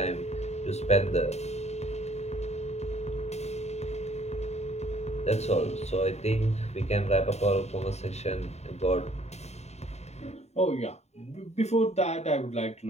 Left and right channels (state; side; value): late; right; 0.32 ms